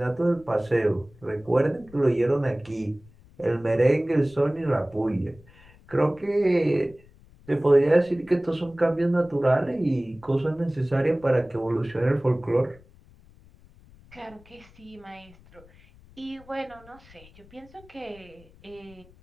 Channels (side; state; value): left; noise; rumble, 25 dB below the sound